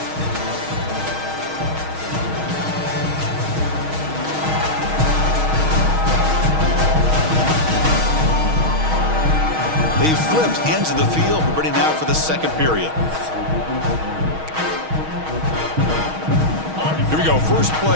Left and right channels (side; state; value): left; late; 6.4 ms